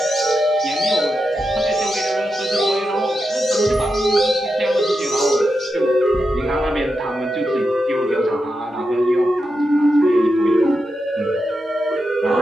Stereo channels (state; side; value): normal; both; correlation 0.88